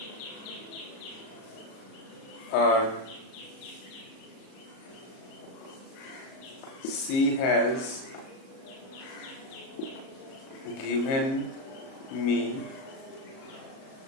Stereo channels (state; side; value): late; right; 37 ms